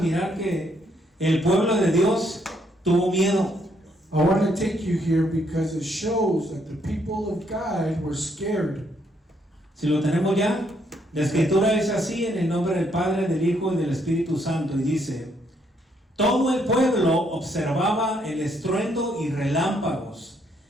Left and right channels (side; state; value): both; normal; correlation 0.72